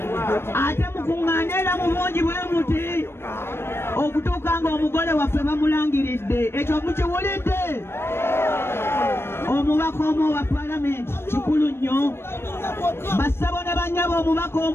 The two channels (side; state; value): right; late; 0.12 ms